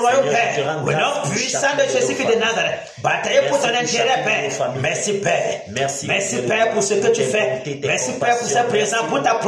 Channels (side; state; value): both; identical; correlation 1.00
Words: Père. Au nom puissant de Jésus-Christ de Nazareth. Batailler pour ton intérêt, Père. Merci, Père. Merci, Père, pour ce que tu fais. Merci, Père, pour ce présent, pour ta